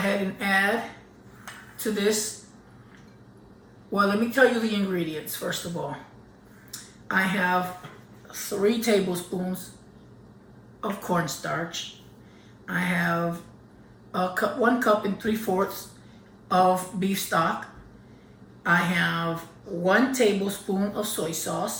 and add to this. Well, let me tell you the ingredients first of all. I have 3 tablespoons of cornstarch. I have 1 cup and 3/4 of beef stock. I have 1 tablespoon of soy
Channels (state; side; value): identical; both; correlation 1.00